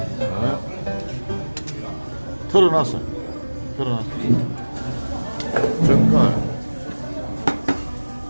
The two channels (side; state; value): both; inverted; correlation -1.00